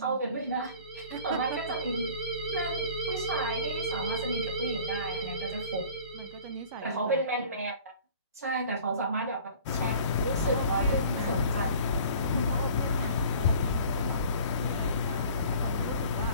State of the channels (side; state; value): both; inverted; correlation -0.48